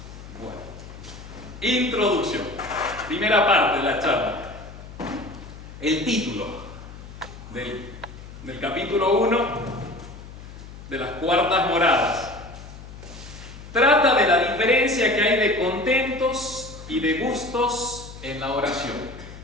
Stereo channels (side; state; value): left; noise; hum, 15 dB below the sound